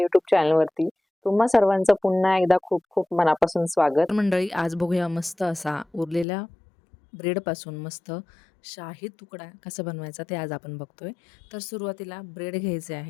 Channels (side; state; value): right; drops out; at 6.2 s